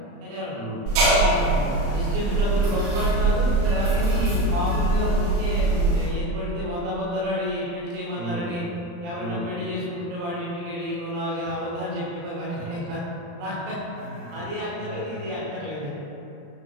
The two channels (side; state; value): left; late; 35 ms